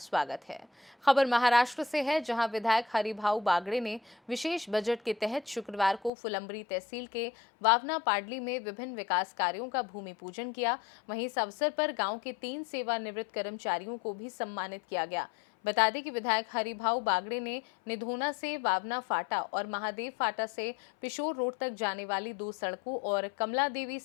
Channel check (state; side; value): drops out; right; at 6.1 s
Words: है। खबर महाराष्ट्र से है, जहां विधायक हरिभाऊ बागड़े ने विशेष बजट के तहत शुक्रवार को फुलंब्री तहसील के वावना पाडली में विभिन्न विकास कार्यों का भूमि पूजन किया। वहीं इस अवसर पर गांव के 3 सेवानिवृत्त कर्मचारियों को भी सम्मानित किया गया। बता दें कि विधायक हरिभाऊ बागड़े ने निधोना से वावना फाटा और महादेव फाटा से पिशोर रोड तक जाने वाली 2 सड़कों और कमला देवी